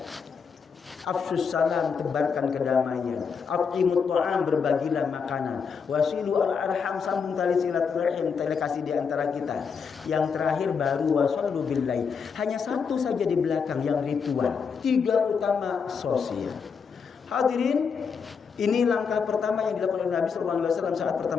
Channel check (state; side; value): quieter; right; 6.0 dB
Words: Afshus salam, tebarkan kedamaian. At'imut ta'am, berbagilah makanan. Wasilu al-arham, sambung tali silaturahim, tali kasih di antara kita. Yang terakhir baru wasallu billahi. Hanya 1 saja di belakang yang ritual. 3 utama sosial. Hadirin, ini langkah pertama yang dilakukan oleh Nabi SAW saat